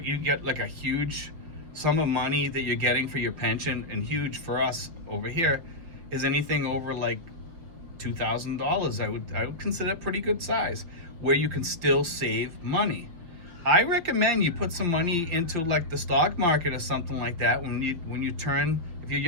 get like a huge sum of money that you're getting for your pension, and huge for us over here is anything over like $2,000. I would consider a pretty good size, where you can still save money. I recommend you put some money into like the stock market or something like that when you turn, if you're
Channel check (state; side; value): late; left; 5.6 ms